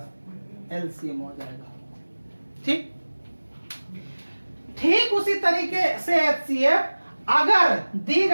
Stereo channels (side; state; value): both; inverted; correlation -1.00